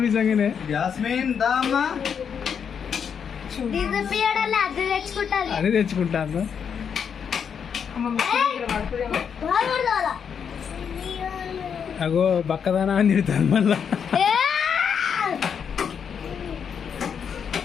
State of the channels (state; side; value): quieter; right; 7.2 dB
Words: నిజంగానే. జాస్మిన్ దా అమ్మా. అదే తెచ్చుకుంటాను. అగో బక్కదానా అని తిడతాను మళ్ళా.